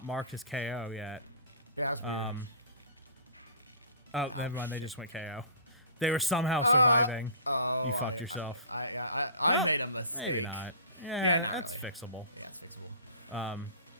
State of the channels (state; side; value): inverted; both; correlation -0.41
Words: marked as KO yet. Yeah, that's weird. Oh, Ow, never mind, they shit. just went KO. They were somehow surviving. Oh, I made a Maybe mistake. not. Yeah, not it's really. fixable. Yeah, it's fixable.